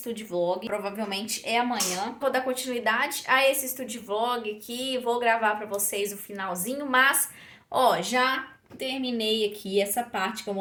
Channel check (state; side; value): identical; both; correlation 1.00